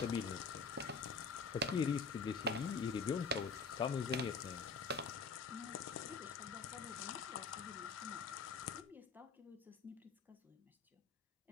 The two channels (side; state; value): right; quieter; 4.9 dB